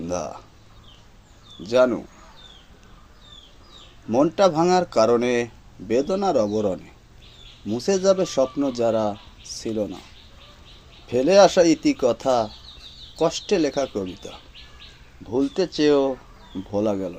জানু, মনটা ভাঙার কারণে, বেদনার অবরণে মুছে যাবে স্বপ্ন যারা ছিল না। ফেলে আসা ইতিকথা, কষ্টে লেখা কবিতা ভুলতে চেয়েও ভোলা গেল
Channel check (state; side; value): identical; both; correlation 1.00